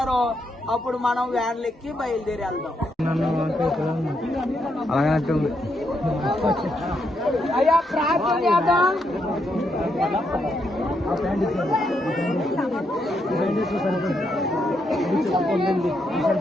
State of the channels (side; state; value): both; normal; correlation 0.79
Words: అప్పుడు మనం వ్యాన్లెక్కి బయలుదేరి వెళ్దాం. అయ్యా ప్రార్థన చేద్దాం.